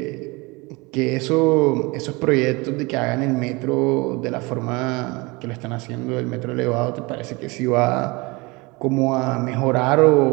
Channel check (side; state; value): left; quieter; 25.3 dB